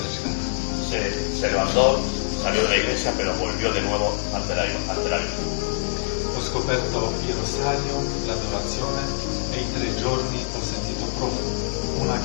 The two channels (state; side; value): silent; right; digital silence